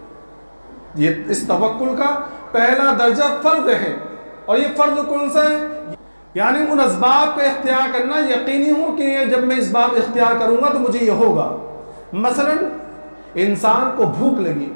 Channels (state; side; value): inverted; both; correlation -1.00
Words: یہ اس توکل کا پہلا درجہ فرض ہے، اور یہ فرض کون سا ہے؟ یعنی ان اسباب کا اختیار کرنا، یقینی ہو کہ جب میں اسباب اختیار کروں گا تو مجھے یہ ہوگا۔ مثلا انسان کو بھوک لگی،